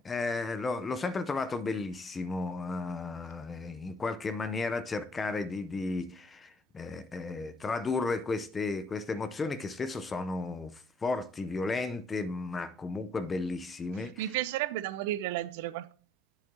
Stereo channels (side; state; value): both; normal; correlation 0.65